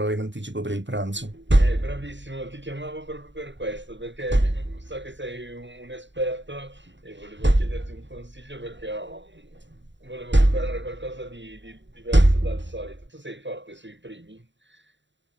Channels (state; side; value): late; left; 0.53 ms